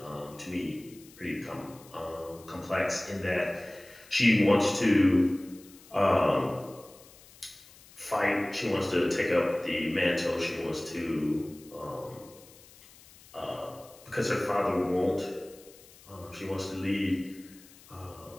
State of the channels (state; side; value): noise; left; hiss, 23 dB below the sound